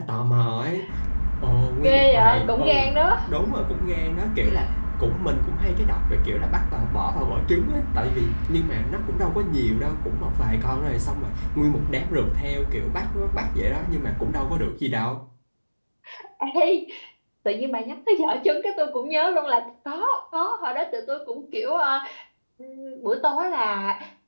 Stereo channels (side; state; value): both; inverted; correlation -1.00